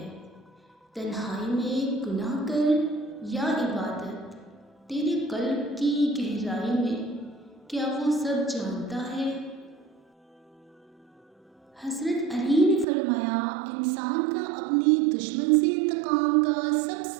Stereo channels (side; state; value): left; drops out; at 12.9 s